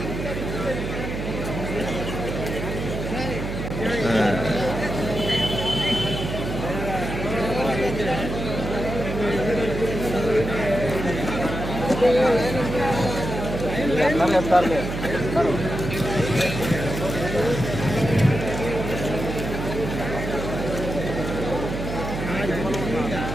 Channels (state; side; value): noise; right; hum, 5 dB below the sound